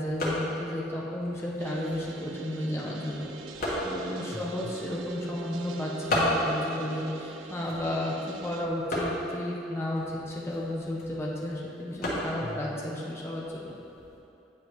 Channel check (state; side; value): normal; both; correlation 0.56